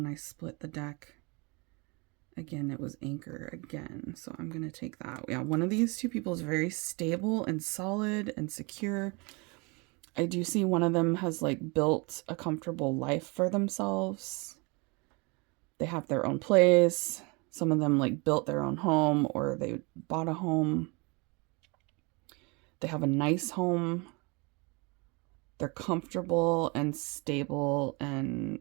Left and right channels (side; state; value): left; quieter; 29.2 dB